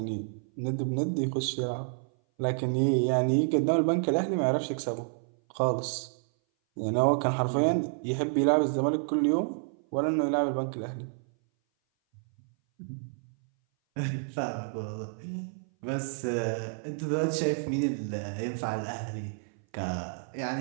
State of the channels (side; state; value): left; silent; 57 dB below the other